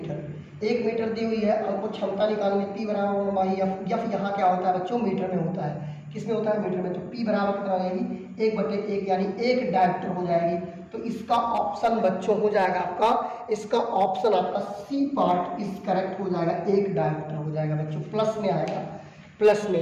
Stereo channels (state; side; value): identical; both; correlation 1.00